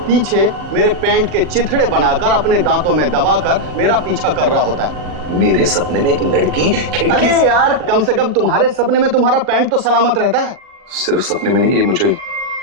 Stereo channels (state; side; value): late; left; 40 ms